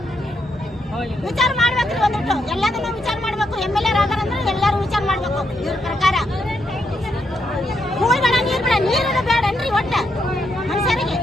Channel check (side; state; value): both; normal; correlation 0.79